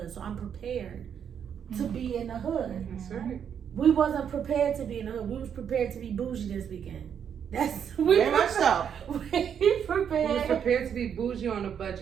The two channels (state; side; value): quieter; left; 8.1 dB